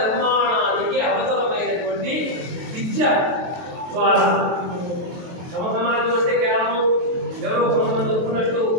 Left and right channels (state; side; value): late; left; 23 ms